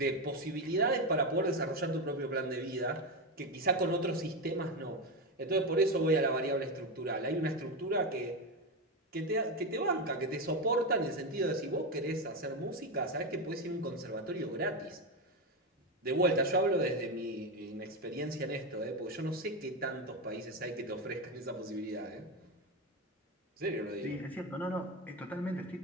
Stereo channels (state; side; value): normal; both; correlation 0.13